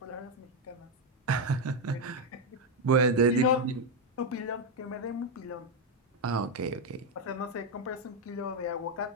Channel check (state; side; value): normal; both; correlation 0.04